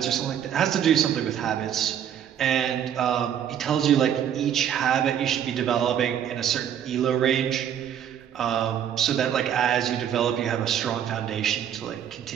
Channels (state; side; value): quieter; left; 9.4 dB